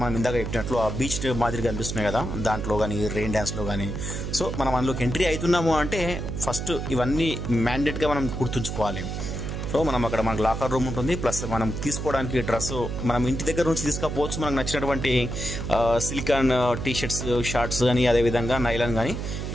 మనం ఇందాక చెప్పినట్లు ఆ బీచ్ మాదిరిగా అనిపిస్తున్నాయి కదా, దాంట్లో కానీ రెయిన్ డ్యాన్స్లో కానీ. సో మనం అందులోకి ఎంట్రీ అవుతున్నాము అంటే ఫస్ట్ ఇవన్నీ మ్యాండేట్గా మనం గుర్తుంచుకోవాలి. సో మనం అక్కడ మనకు లాకర్ రూమ్ ఉంటుంది, ప్లస్ మనం తీసుకోవడానికి డ్రెస్ మనం ఇంటి దగ్గర నుంచి తీసుకపోవచ్చు. మనకు నచ్చినటువంటి సిలికాన్ టీషర్ట్స్, షార్ట్స్ కానీ అదేవిధంగా నైలాన్ కానీ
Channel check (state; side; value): noise; right; hum, 4 dB below the sound